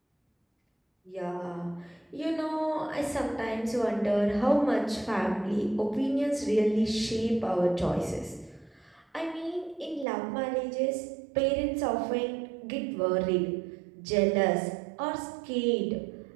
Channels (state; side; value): drops out; left; at 10.1 s